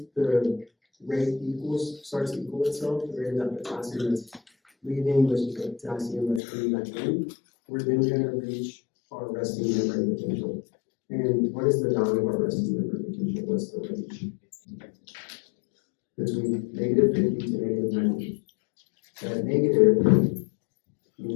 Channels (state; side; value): drops out; right; at 6.4 s